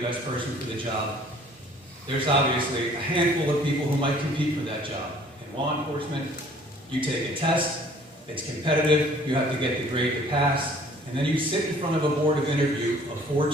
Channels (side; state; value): both; normal; correlation 0.54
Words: best person for the job. There's obviously a handful of people who might compete for that job. In law enforcement, you take a test, it's competitive, you have to get the grade to pass, and then you sit in front of a board of interview of 4